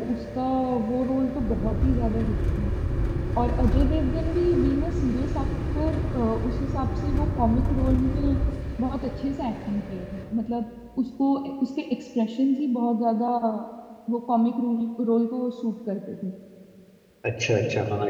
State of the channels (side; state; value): both; identical; correlation 1.00